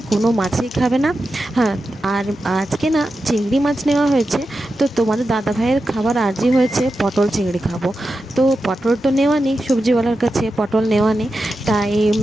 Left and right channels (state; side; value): normal; both; correlation 0.90